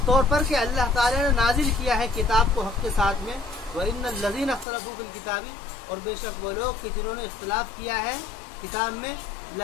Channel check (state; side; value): drops out; right; at 4.7 s